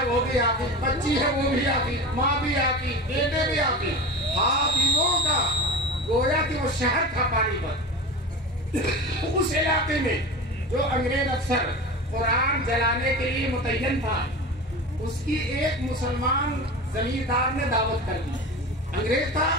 وہ بھی آتی, بچی ہے وہ بھی آتی, ماں بھی آتی, بیٹے بھی آتی. حافظوں کا گویا کہ وہ شہر تھا پانی پت. اس علاقے میں جو انگریز افسر قرآن جلانے کے لیے متعین تھا اس کی ایک مسلمان زمیندار نے دعوت کر دی. انگریز تھا,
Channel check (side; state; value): both; normal; correlation 0.31